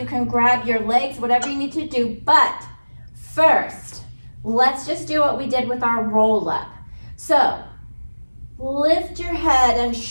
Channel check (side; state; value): both; inverted; correlation -1.00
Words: can grab your legs, whatever you need to do, but first, let's just do what we did with our roll up. So lift your head and